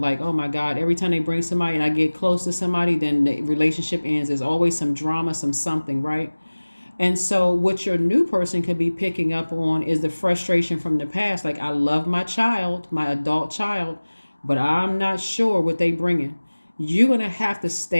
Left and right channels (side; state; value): both; inverted; correlation -1.00